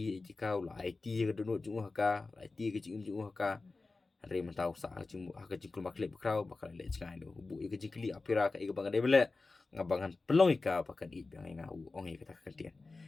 jika la IT ka dunu jungu haka la IT ka jingum jungu haka hari mentau sa cingmu haka cingkul makle krau bakal le jingai do bu i ka jingkli apira ka i ka bangan debele ngabangan pelong ika pakan i bang nga u ong i kata kantian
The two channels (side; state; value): right; quieter; 3.7 dB